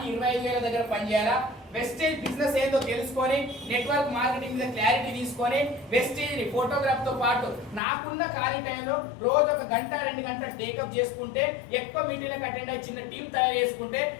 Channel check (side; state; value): right; drops out; at 7.8 s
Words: 25,000 దగ్గర పనిచేయాలా? వెస్టేజ్ బిజినెస్ ఏందో తెలుసుకొని, నెట్వర్క్ మార్కెటింగ్ మీద క్లారిటీ తీసుకొని, వెస్టేజ్ ఫోటోగ్రాఫ్ తో పాటు నాకున్న ఖాళీ టైంలో రోజు 1 గంట 2 గంటలు టేకప్ చేసుకుంటే, ఎక్కువ మీటింగ్లకు అటెండ్ అయ్యి చిన్న టీం తయారు చేసుకుంటే,